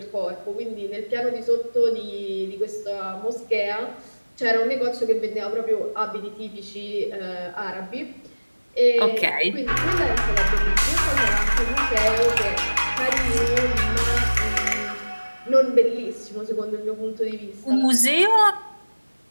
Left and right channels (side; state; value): both; inverted; correlation -1.00